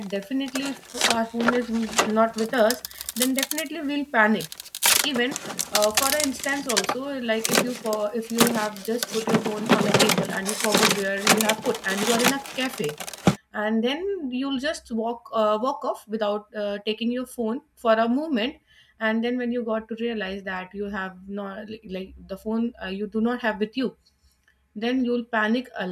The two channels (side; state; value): both; identical; correlation 1.00